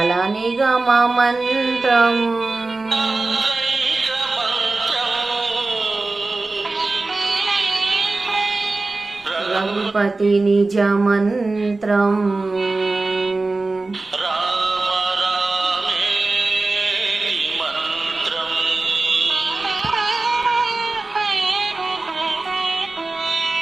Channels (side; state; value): left; quieter; 3.4 dB